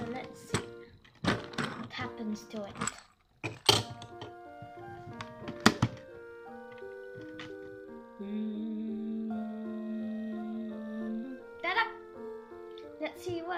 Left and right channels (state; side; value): identical; both; correlation 1.00